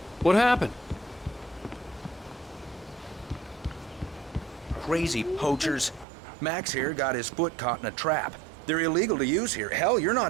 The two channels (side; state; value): left; drops out; at 6.1 s